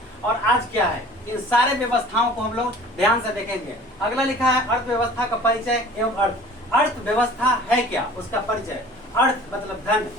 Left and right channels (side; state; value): both; normal; correlation 0.46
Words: और आज क्या है, इन सारे व्यवस्थाओं को हम लोग ध्यान से देखेंगे। अगला लिखा है अर्थव्यवस्था का परिचय एवं अर्थ। अर्थव्यवस्था है क्या, उसका परिचय। अर्थ मतलब धन,